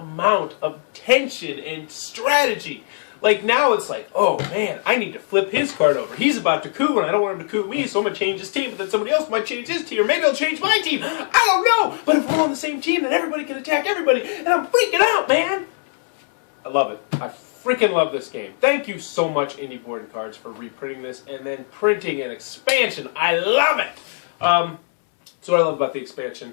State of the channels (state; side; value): silent; right; 65 dB below the other